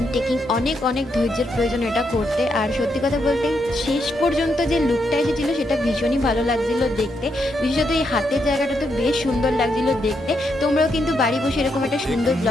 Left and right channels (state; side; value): normal; both; correlation 0.80